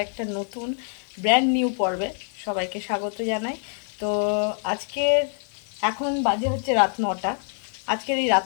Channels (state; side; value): silent; right; 56 dB below the other